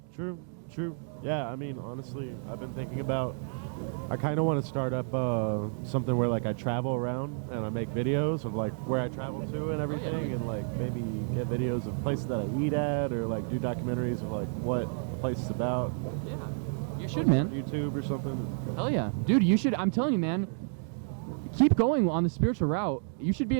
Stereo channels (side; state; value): left; silent; 57 dB below the other